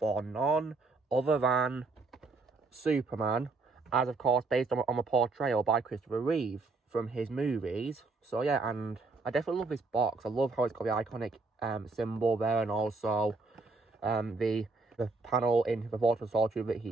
none other than Superman. As, of course, based on a portrayal by Christopher Reeve from his movies. So, yeah, and I definitely love this box. I love how it's got the iconic symbol there. And also the panel in the Fortress of Solitude that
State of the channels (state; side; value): quieter; left; 3.8 dB